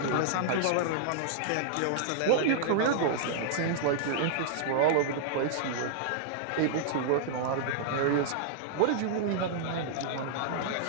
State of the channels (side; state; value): both; different; correlation -0.01